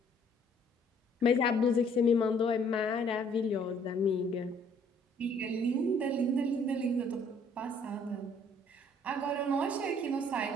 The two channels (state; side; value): normal; both; correlation 0.61